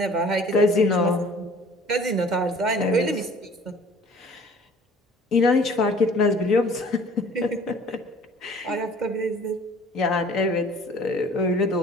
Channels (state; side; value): normal; both; correlation 0.51